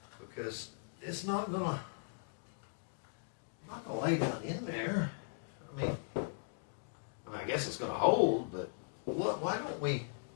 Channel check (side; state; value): right; silent; digital silence